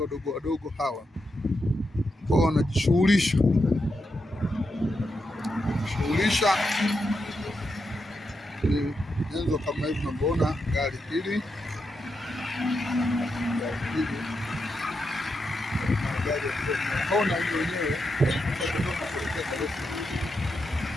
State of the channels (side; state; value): both; normal; correlation 0.85